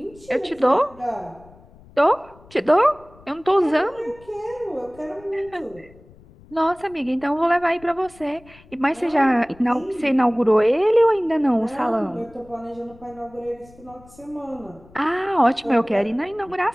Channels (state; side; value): noise; left; rumble, 24 dB below the sound